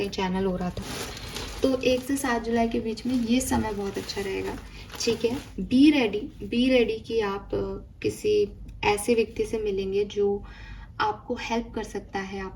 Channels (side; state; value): both; identical; correlation 1.00